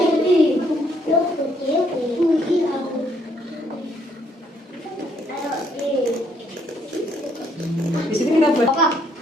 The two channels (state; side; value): normal; both; correlation 0.69